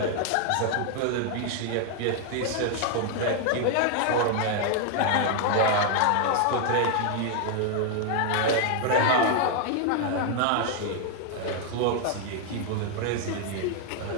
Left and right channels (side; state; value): both; different; correlation 0.00